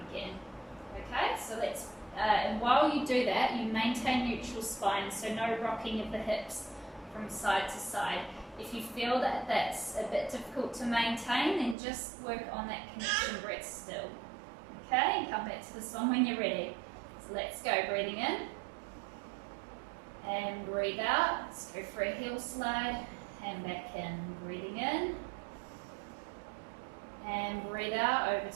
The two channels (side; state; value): left; drops out; at 11.8 s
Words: again. Okay, so let's, and while you do that, you maintain neutral spine, so no rocking of the hips from side to side. If you feel that that's a bit difficult to maintain, then just work on that connection breath still. Okay, and come back to this one when you're ready. So let's go, breathing in. And breathe out. Let's go for a heel slide and back in. Breathing in. And breathe out over